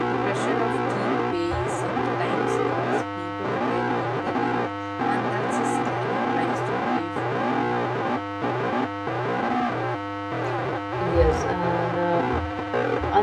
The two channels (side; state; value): both; identical; correlation 1.00